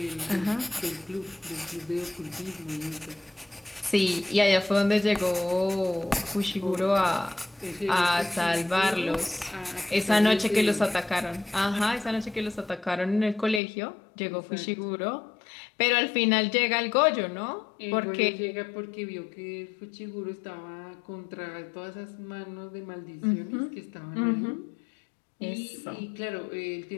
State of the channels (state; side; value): drops out; right; at 13.6 s